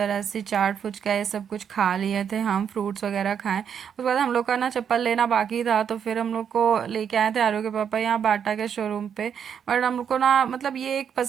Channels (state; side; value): quieter; left; 7.9 dB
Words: ऐसे चाट फुचका ये सब कुछ खा लिए थे। हम फ्रूट्स वगैरह खाएं। उसके बाद हम लोग का ना चप्पल लेना बाकी था, तो फिर हम लोग को लेके आए थे आरू के पापा यहाँ बाटा के शोरूम पे। बट हम लोग को ना मतलब ये एक